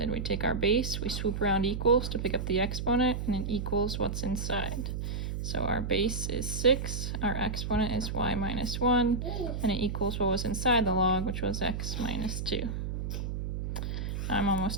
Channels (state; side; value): noise; right; hum, 3 dB below the sound